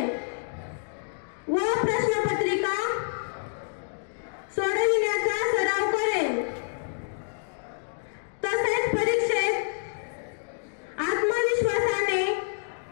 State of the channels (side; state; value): right; silent; digital silence